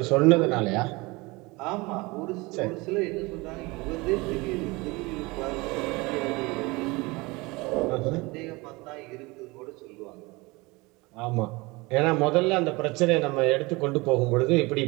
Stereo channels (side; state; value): left; quieter; 24.1 dB